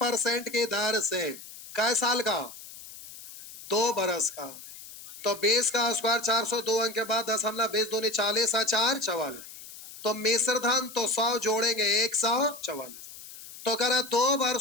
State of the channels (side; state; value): left; noise; hiss, 16 dB below the sound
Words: की दर से कै साल का 2 वर्ष का, तो 20 का स्क्वायर 402 अंक के बाद 10,20 दूनी 40 4 44, तो मिश्र धन तो 100 जोड़ेंगे 144। तो करा 2